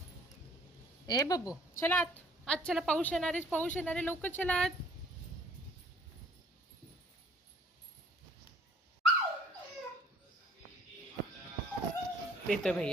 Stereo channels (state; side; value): normal; both; correlation 0.58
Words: ए बब्बू चला आत. आज चला, पाऊस येणार आहे, पाऊस येणार आहे, लवकर चला आत. येतोय